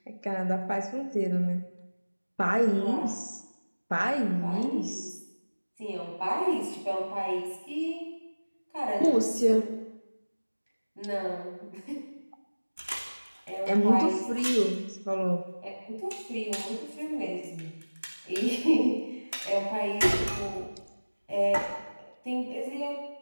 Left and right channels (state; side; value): inverted; both; correlation -1.00